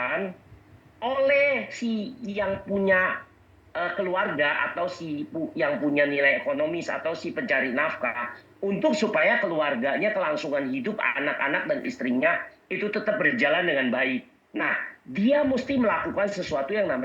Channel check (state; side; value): identical; both; correlation 1.00